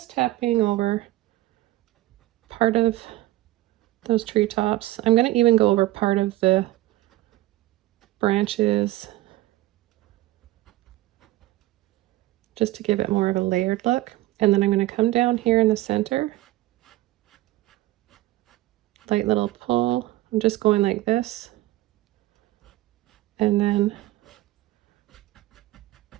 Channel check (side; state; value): left; quieter; 17.0 dB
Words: tapping over part of those treetops. I'm going to even go over part of the branches just to give it more of a layered look. And then I'm going to come down here in the center, light little pull. I'm just going like this, and then